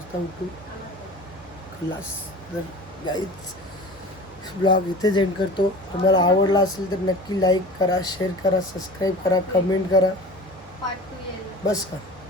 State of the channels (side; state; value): both; normal; correlation 0.38